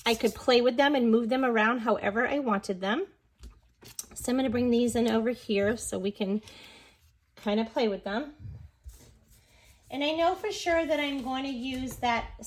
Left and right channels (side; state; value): both; identical; correlation 1.00